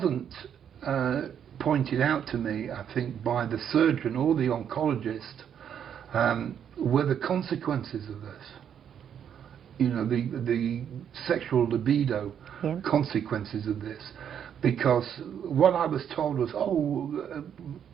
pointed out to me, I think, by the surgeon or the oncologist, were the consequences of this. You know, the sexual libido consequences of this. Because what I was told was,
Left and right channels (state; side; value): quieter; left; 8.7 dB